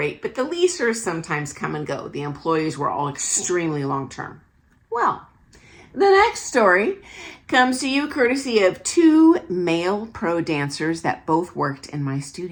but the leasers sometimes come and go. The employees were all extremely long-term. Well, the next story comes to you courtesy of two male pro dancers that both worked in my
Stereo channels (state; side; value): identical; both; correlation 1.00